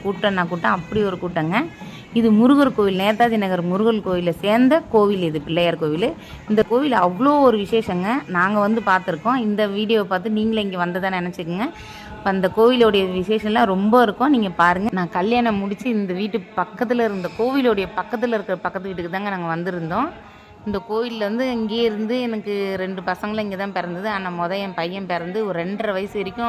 கூட்டம்னா கூட்டம், அப்படி ஒரு கூட்டங்க. இது முருகர் கோவில், நேதாஜி நகர் முருகர் கோவிலில் சேர்ந்த கோவில். இது பிள்ளையார் கோவில். இந்த கோவில் அவ்வளோ ஒரு விசேஷங்க. நாங்கள் வந்து பார்த்துருக்கோம். இந்த வீடியோவை பார்த்து நீங்களே இங்கே வந்ததை நினச்சிக்கோங்க. இப்போ அந்த கோவிலோடைய விசேஷம்லாம் ரொம்ப இருக்கும். நீங்கள் பாருங்கள். நான் கல்யாணம் முடித்து இந்த வீட்டு பக்கத்தில் இருந்த கோவிலோடைய பக்கத்தில் இருக்கிற பக்கத்து வீட்டுக்கு தாங்க நாங்கள் வந்திருந்தோம். இந்த கோவிலில் வந்து இங்கேயே இருந்து எனக்கு 2 பசங்களும் இங்கே தான் பிறந்தது. ஆனால் என் பையன் பிறந்து ஒரு 2.5 வயசு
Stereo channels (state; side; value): identical; both; correlation 1.00